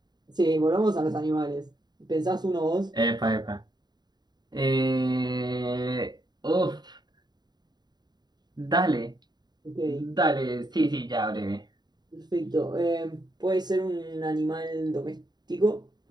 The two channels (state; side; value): late; left; 0.20 ms